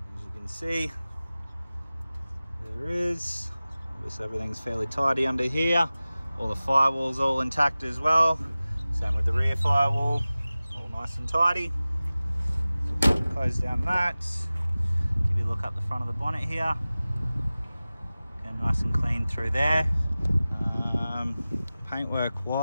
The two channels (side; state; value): both; inverted; correlation -0.97